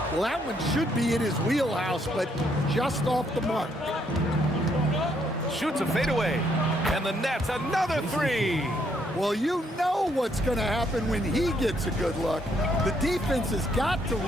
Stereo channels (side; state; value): both; normal; correlation 0.72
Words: Well, that one should be in his wheelhouse, but just off the mark. Shoots a fadeaway, and the net's another 3. Well, you know what's going to happen when he gets a good look. The defense has got to